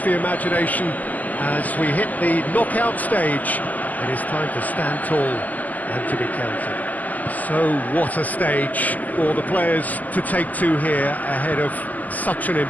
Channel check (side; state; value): right; late; 0.080 ms